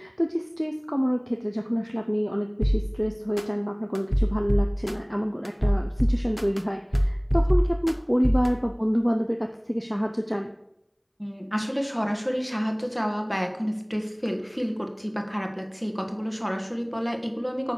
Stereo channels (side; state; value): both; identical; correlation 1.00